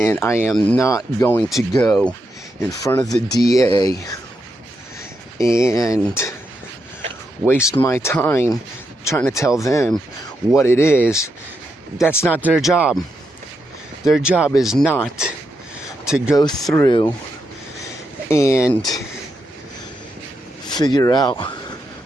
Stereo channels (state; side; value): normal; both; correlation 0.83